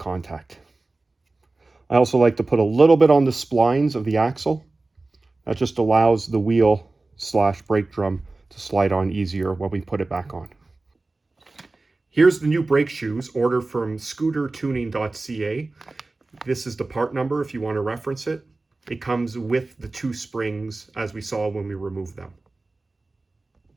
I also like to put a little bit on the splines of the axle. That just allows the wheel / brake drum to slide on easier when we put it back on. Here's the new brake shoes, ordered from scootertuning.ca. This is the part number if you want to reference it. It comes with the 2 springs as we saw when we removed them.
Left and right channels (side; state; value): left; quieter; 3.3 dB